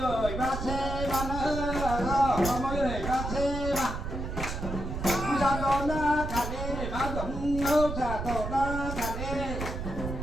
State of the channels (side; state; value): right; noise; rumble, 5 dB below the sound